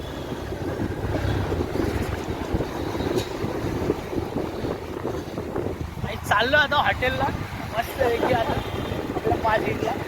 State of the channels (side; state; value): both; identical; correlation 1.00